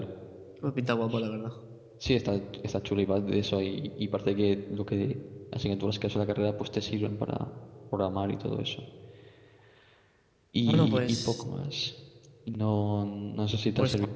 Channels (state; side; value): identical; both; correlation 1.00